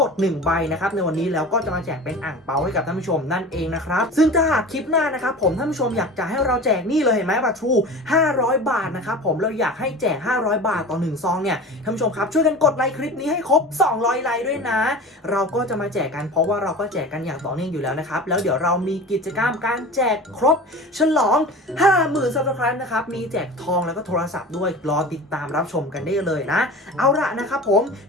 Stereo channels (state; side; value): normal; both; correlation 0.35